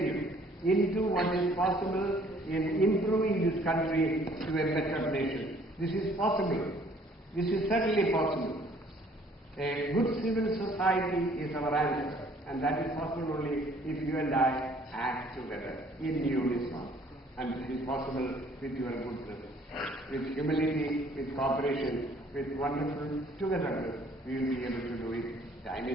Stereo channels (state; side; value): normal; both; correlation 0.59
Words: into what is possible in improving this country to a better nation. This is possible. This is certainly possible. A good civil society is our answer, and that is possible only if you and I act together in unison. And this is possible with your goodness, with humility, with cooperation, with wonderful togetherness. We will be able to do it. Time